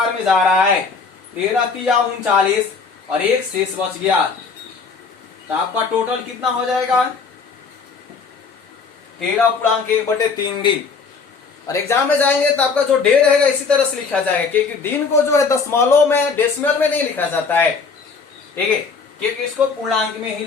में जा रहा है, 13 तिया 39 और 1 शेष बच गया, तो आपका टोटल कितना हो जाएगा? 13.1/3 दिन। और एग्जाम में जाएंगे तो आपका जो डे रहेगा इसी तरह से लिखा जाएगा, क्योंकि दिन को जो है दशमलव में, डेसिमल में नहीं लिखा जाता है। ठीक है, क्योंकि इसको पूर्णांक में ही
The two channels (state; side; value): quieter; right; 5.0 dB